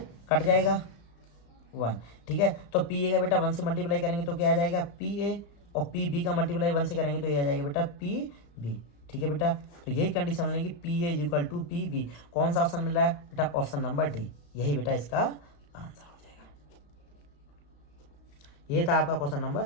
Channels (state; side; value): late; right; 35 ms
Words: कट जाएगा 1। ठीक है, तो पी ए का बेटा 1 से मल्टीप्लाई करेंगे तो क्या आ जाएगा, पी ए, और पी बी का मल्टीप्लाई 1 से करेंगे तो ये आ जाएगा बेटा पी बी। ठीक है बेटा, तो यही कंडीशन मिलेगी, P A is equal to P B. कौन सा ऑप्शन मिल रहा है बेटा, ऑप्शन नंबर डी, यही बेटा इसका आंसर हो जाएगा। ये था आपका क्वेश्चन नंबर